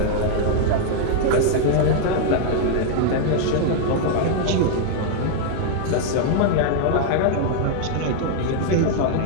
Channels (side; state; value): both; different; correlation 0.00